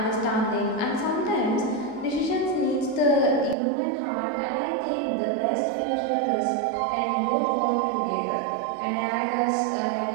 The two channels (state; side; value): drops out; left; at 3.6 s